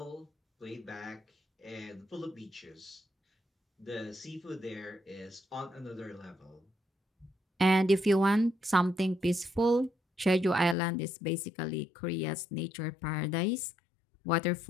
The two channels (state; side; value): drops out; right; at 10.8 s